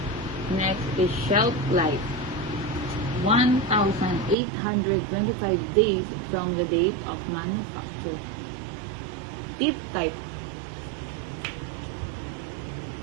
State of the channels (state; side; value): drops out; left; at 4.4 s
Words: Next is shelf life, 1,825 days from the date of manufacture. Tip type,